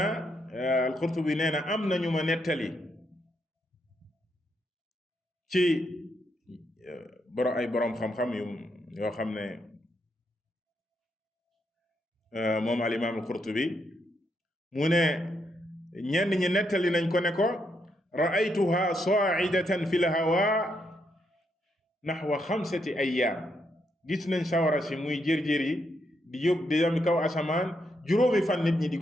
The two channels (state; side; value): normal; both; correlation 0.79